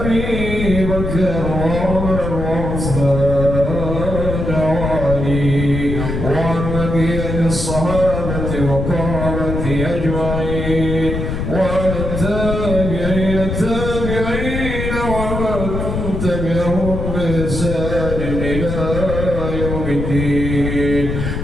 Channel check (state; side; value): noise; left; rumble, 3 dB below the sound